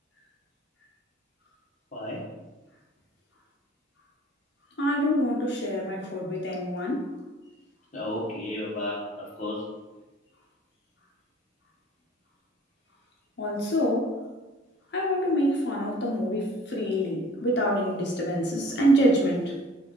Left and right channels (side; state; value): both; normal; correlation 0.51